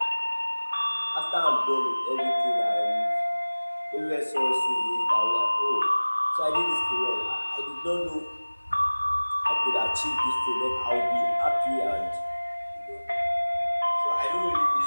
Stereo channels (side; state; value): both; inverted; correlation -1.00